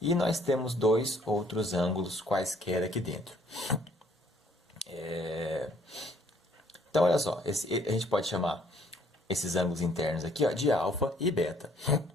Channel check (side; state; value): both; normal; correlation 0.63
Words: E nós temos dois outros ângulos quaisquer aqui dentro. Então, olha só, a gente pode chamar esses ângulos internos aqui ó, de alfa e beta.